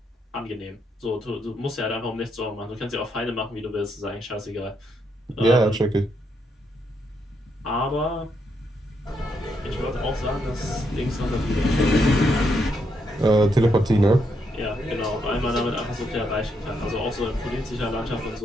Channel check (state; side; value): normal; both; correlation 0.78